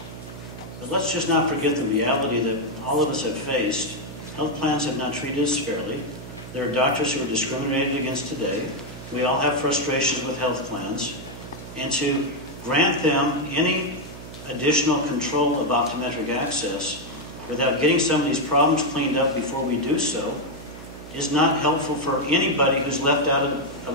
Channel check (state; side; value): noise; right; hum, 14 dB below the sound